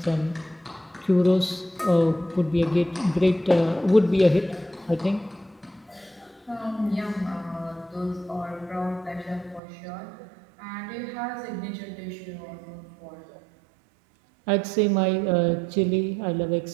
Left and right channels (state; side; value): drops out; left; at 9.6 s